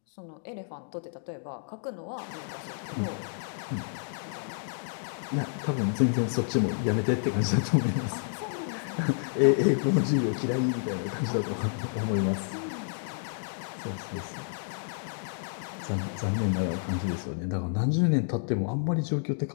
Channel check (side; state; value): right; silent; digital silence